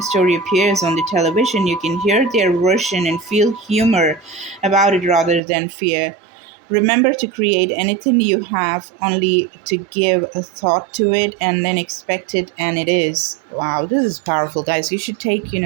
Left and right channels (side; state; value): left; drops out; at 5.4 s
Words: appears on the television, you can hear their version and feel humor about it rather than fear. Remember to create anything you have only to give a thought to it and then expect it, and it is. Wow, this is powerful, guys. You should take,